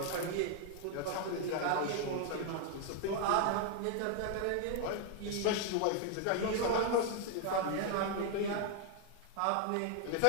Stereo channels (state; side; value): different; both; correlation 0.00